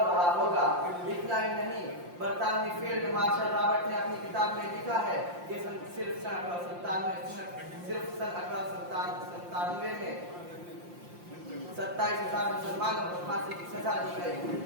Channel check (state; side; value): late; left; 5.7 ms